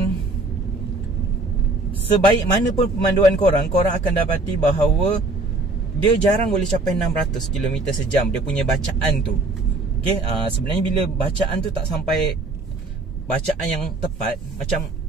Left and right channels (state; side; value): quieter; left; 3.2 dB